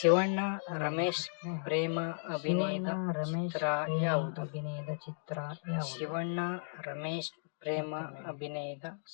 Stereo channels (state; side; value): silent; right; digital silence